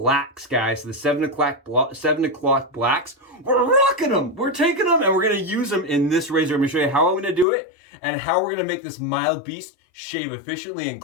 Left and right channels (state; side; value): drops out; right; at 7.5 s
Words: guys. So the 7 o'clock blacks. We're rocking them. We're taking them and we're going to use them in this razor. I'm going to show you how I'm going to do it and how we're going to make this mild beast shave efficiently and